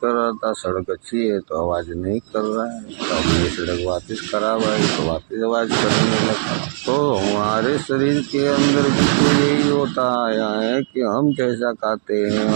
रहा था, सड़क अच्छी है तो आवाज नहीं कर रहा है। तो अब ये सड़क वापस खराब आई तो वापस आवाज करने लगा। तो हमारे शरीर के अंदर भी तो यही होता आया है कि हम जैसा खाते हैं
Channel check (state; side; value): silent; left; digital silence